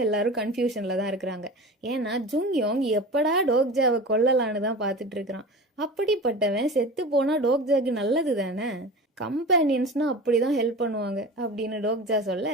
எல்லாரும் கன்ஃபியூஷன்ல தான் இருக்கிறாங்க. ஏன்னா ஜுங்யோங் எப்படா டோக்ஜாவை கொல்லலான்னு தான் பார்த்துட்டு இருக்கிறான். அப்படிப்பட்டவன் செத்து போனா டோக்ஜாக்கு நல்லது தானே, கம்பேனியன்ஸ்னா அப்படிதான் ஹெல்ப் பண்ணுவாங்க அப்படின்னு டோக்ஜா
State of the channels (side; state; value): both; normal; correlation 0.33